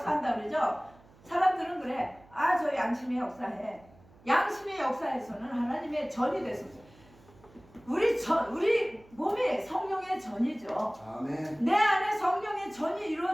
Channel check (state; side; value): noise; right; hum, 26 dB below the sound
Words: 그러죠. 사람들은 그래. 아, 저 양심의 역사해. 양심의 역사에서는 하나님의 전이 됐었어요. 우리 몸이 성령의 전이죠. 아멘. 내 안에 성령의 전이